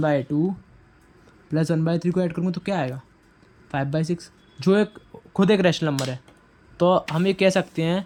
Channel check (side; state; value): both; identical; correlation 1.00